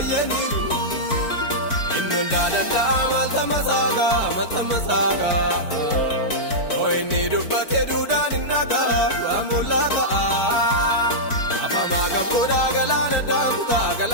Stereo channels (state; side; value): late; right; 4.5 ms